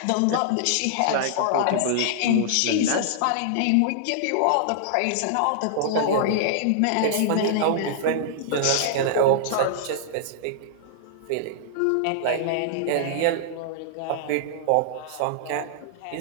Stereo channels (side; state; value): both; different; correlation -0.01